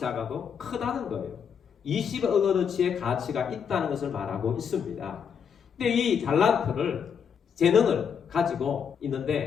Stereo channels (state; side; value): quieter; right; 7.2 dB